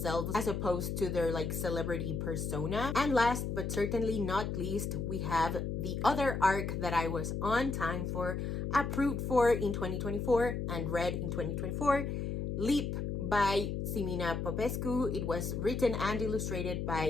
as opposed to their like celebrity persona. And last but certainly not least, we have the other arc that I was on time for, approved for in 2024 and read in 2024, Leap by Simina Popescu. It was written and illustrated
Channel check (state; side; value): noise; left; hum, 2 dB below the sound